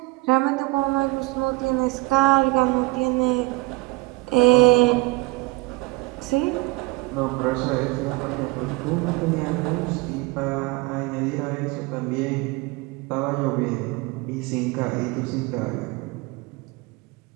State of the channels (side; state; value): left; quieter; 23.2 dB